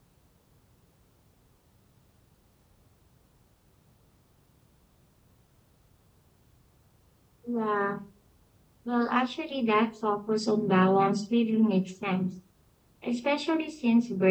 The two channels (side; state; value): both; identical; correlation 1.00